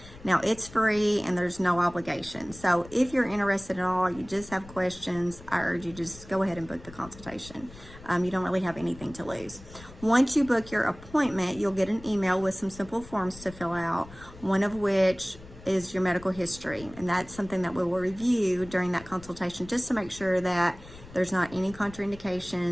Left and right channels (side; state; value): left; noise; rumble, 18 dB below the sound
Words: Now it's free and there's no obligation. So if you're interested at all, you just have questions, I urge you just go ahead and book the consultation. You don't really have anything to lose. Once you book your appointment, you'll get an email with some simple forms to fill out, one of which is your medical history. And that's something that we will review during that consultation just to make sure that there's not any